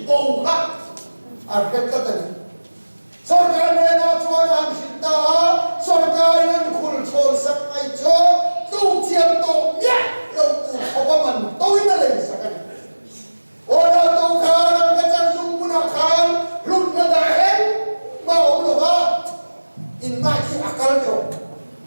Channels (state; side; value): inverted; both; correlation -1.00